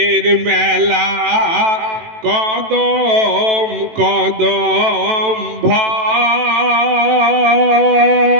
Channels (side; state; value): left; late; 18 ms